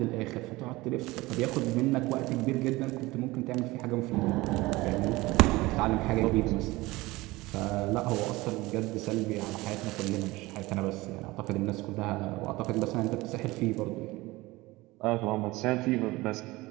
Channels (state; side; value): quieter; left; 20.5 dB